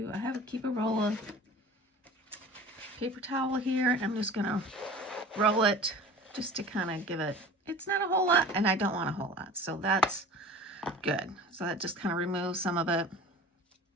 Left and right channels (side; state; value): both; normal; correlation 0.41